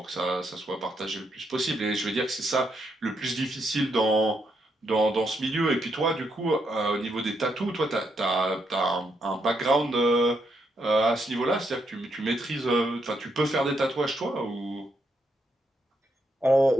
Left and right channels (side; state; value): both; normal; correlation 0.78